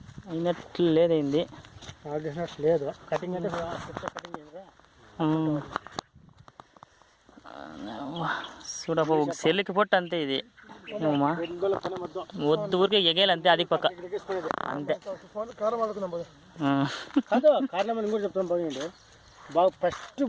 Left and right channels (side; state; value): both; identical; correlation 1.00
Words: అయినట్లు లేదైంది లేదు. కటింగ్ అంటే చూడబ్బా ఒక సెల్లికి పొట్టు అంతే ఇది వద్దు ఊరికే ఎగేయాలి అంతే అది పక్క అంతే. కారణం అని కూడా చెప్తాను బాగుండి బాగా ఫస్ట్